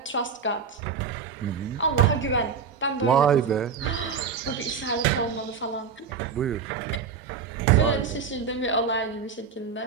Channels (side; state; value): left; quieter; 6.1 dB